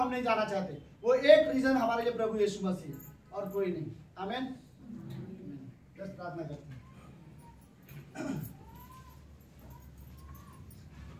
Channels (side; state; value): both; identical; correlation 1.00